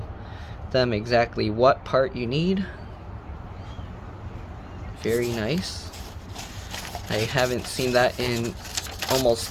them exactly what part you need. Very nice. I haven't seen that in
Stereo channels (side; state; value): both; identical; correlation 1.00